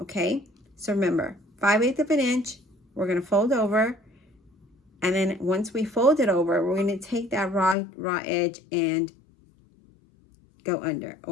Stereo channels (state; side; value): drops out; right; at 7.8 s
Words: So remember, 5/8 of an inch, we're going to fold over, and then once we fold it over, we're going to take that raw edge and go under.